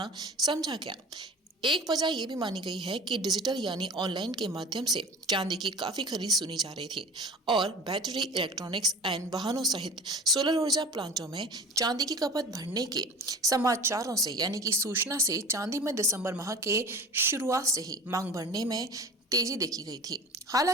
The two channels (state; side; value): normal; both; correlation 0.37